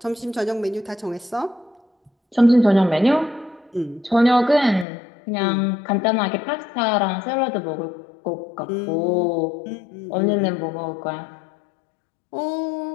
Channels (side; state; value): right; drops out; at 4.9 s